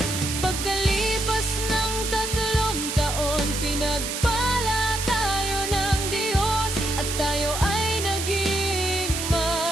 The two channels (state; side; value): noise; right; hiss, 4 dB below the sound